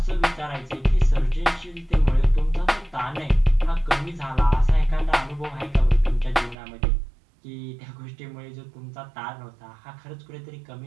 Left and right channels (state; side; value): drops out; left; at 6.6 s